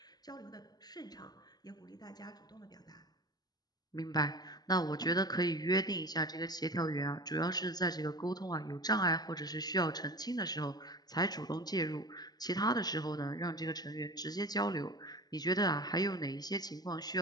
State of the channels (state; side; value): late; right; 0.19 ms